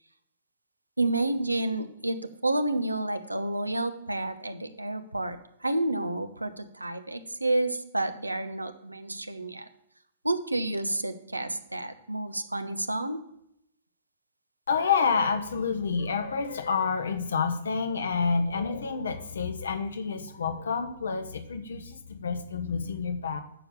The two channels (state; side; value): inverted; both; correlation -0.76